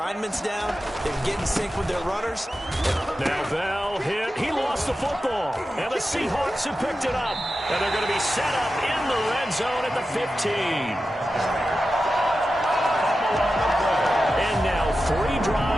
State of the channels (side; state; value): both; normal; correlation 0.92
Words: down, they can get in sync with their runners. Now Bell hit. He lost the football. And the Seahawks have picked it up. And they're going to be set up in the red zone at the 15. And now 3